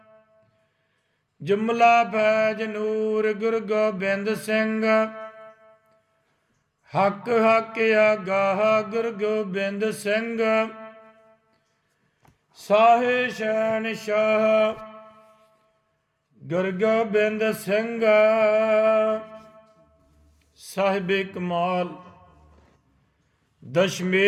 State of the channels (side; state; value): both; identical; correlation 1.00